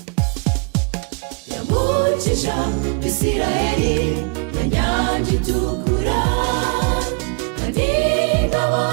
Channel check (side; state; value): left; quieter; 33.4 dB